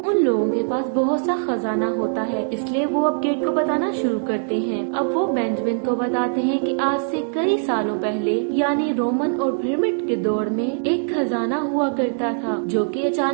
लोगों के पास बहुत सा खजाना होता है, इसलिए वो अब गेट को बताना शुरू करते हैं। अब वो बेंजामिन को बताते हैं कि आज से कई सालों पहले यानी रोमन और पिरामिड के दौर में एक खजाना हुआ करता था जो कि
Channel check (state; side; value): silent; left; digital silence